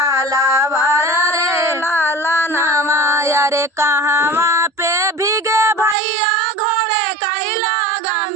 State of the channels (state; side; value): drops out; left; at 6.0 s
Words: रे लाला नवा। रे कहवा पे भीगे भैया घोड़े कैला